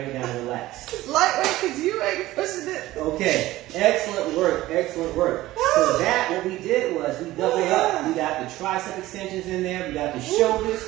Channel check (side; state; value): left; quieter; 16.6 dB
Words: it down and relax. It's lightweight because you ain't pushing it. Okay. Excellent work. Excellent work. So that, what we did was we doubled up. We got the tricep extensions in there. We got the shoulders.